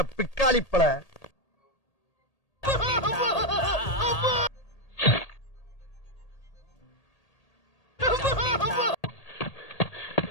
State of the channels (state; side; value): late; right; 1.8 ms